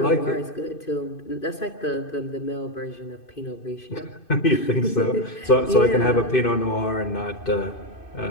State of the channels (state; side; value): late; right; 2.5 ms